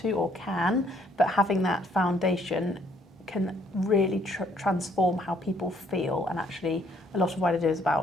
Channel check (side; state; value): both; normal; correlation 0.66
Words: to or can, but having that foundation can really transform how people feel. And actually a lot of what I do is